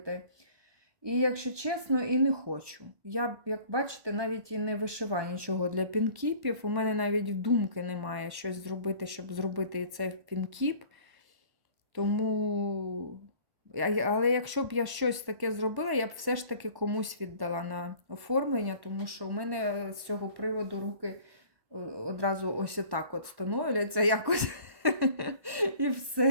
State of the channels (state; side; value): late; left; 1.1 ms